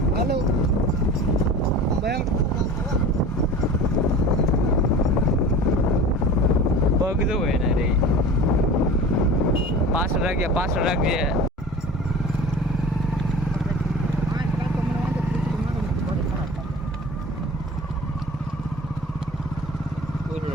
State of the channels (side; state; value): both; normal; correlation 0.38